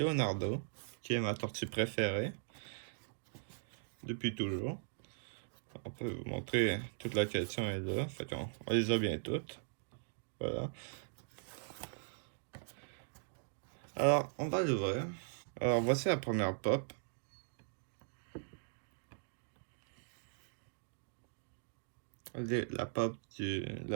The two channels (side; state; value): left; silent; digital silence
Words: qui est ma tortue préférée depuis toujours. On peut vous montrer toute la collection est là, fait qu'on on les a bien toutes. Voilà. Alors, on va l'ouvrir. Alors, voici la première pop. La pop de